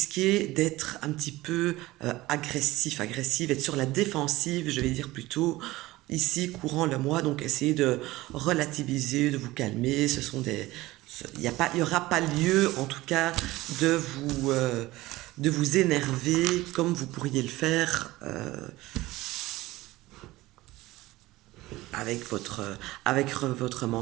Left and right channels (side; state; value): left; quieter; 18.5 dB